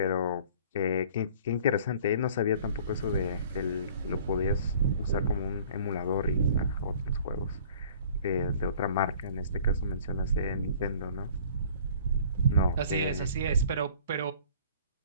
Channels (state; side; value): inverted; both; correlation -0.50